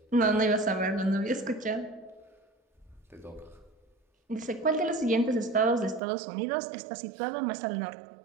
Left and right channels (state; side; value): drops out; left; at 6.0 s